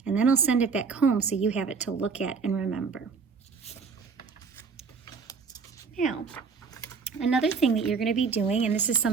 and then I'll send it back home so you have it to look at and remember. Now, another thing that you're going to be doing, and this is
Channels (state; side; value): quieter; left; 5.4 dB